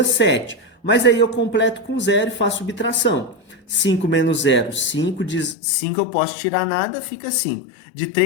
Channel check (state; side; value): drops out; right; at 5.6 s